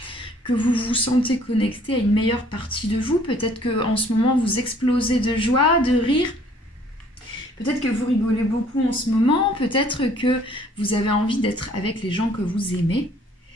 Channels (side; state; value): both; normal; correlation 0.58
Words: que vous vous sentez connecté à une meilleure partie de vous. Peut-être qu'en ce moment, vous explosez de joie, de rire. Peut-être que vous rigolez beaucoup en ce moment, peut-être que vous avez envie d'être avec les gens que vous aimez.